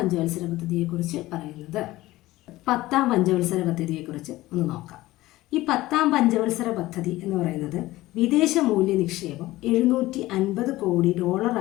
പദ്ധതിയെക്കുറിച്ച് പറയുന്നത്. 10ാം പഞ്ചവത്സര പദ്ധതിയെക്കുറിച്ച് ഒന്ന് നോക്കാം. ഈ 10ാം പഞ്ചവത്സര പദ്ധതി എന്ന് പറയുന്നത് വിദേശ മൂല്യ നിക്ഷേപം $750 കോടി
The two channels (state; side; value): quieter; right; 17.5 dB